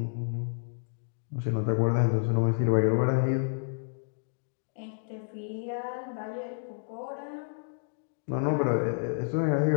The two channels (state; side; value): silent; right; digital silence